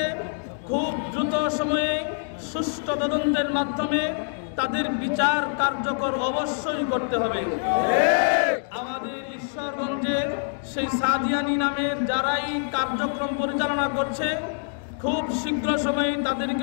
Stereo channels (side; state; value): right; silent; digital silence